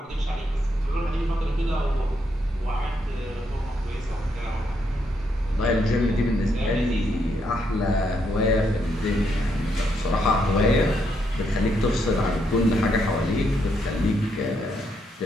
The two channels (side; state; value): both; normal; correlation 0.77